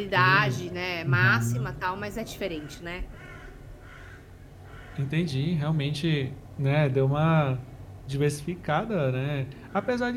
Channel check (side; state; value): both; identical; correlation 1.00